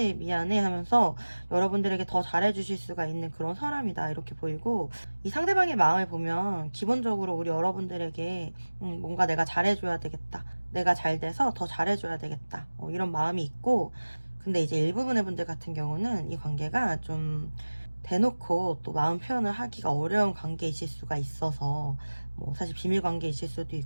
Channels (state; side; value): inverted; both; correlation -1.00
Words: 미안해 하면서 여러분들에게 더 잘해주실 수가 있는 그런 사람이다, 이렇게 보이고 들고, 이 상대방의 마음을 보면 기본적으로 우리 여러분들에게 뭔가 내가 잘해줘야 되겠다, 내가 잘 돼서 더 잘해줘야 되겠다, 이런 마음이 있고, 근데 이제 일부분의 분들 같은 경우는 이 관계가 좀 대놓고 또 마음 표현을 하기가 어려운 관계이실 수가 있어서, 뭐 사실 비밀 관계이실 수도